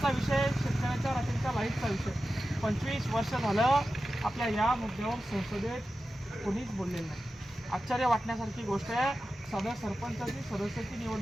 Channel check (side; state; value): both; normal; correlation 0.93